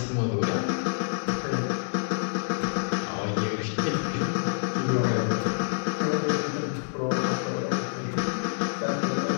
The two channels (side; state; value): right; silent; 60 dB below the other